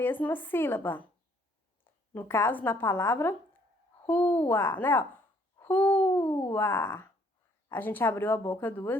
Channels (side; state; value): both; normal; correlation 0.64